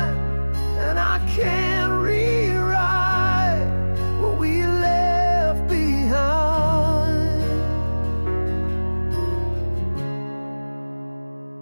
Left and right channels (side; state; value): both; inverted; correlation -1.00